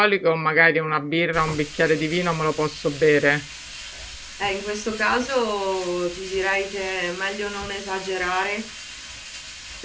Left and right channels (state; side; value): identical; both; correlation 1.00